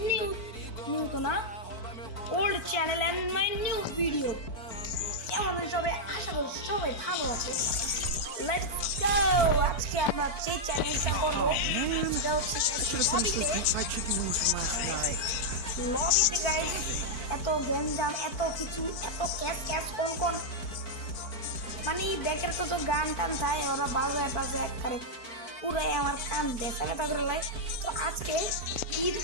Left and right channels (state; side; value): late; right; 4.5 ms